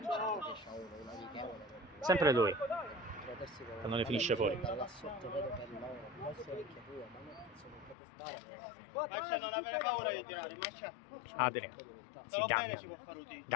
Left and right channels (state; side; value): drops out; right; at 8.0 s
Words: Sempre lui. Non ne finisce fuori. Non avere paura di tirare, Adrian. Sì,